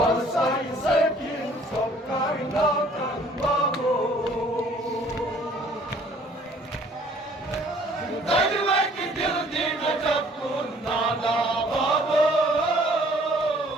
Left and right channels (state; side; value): normal; both; correlation 0.57